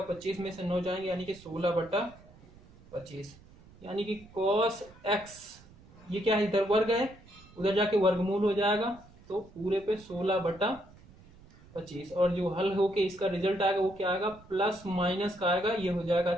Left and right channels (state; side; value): noise; right; rumble, 24 dB below the sound